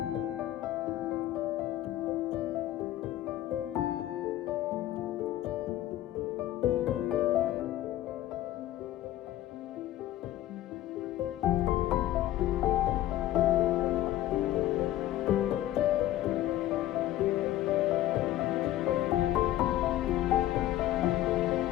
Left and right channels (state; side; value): quieter; right; 14.0 dB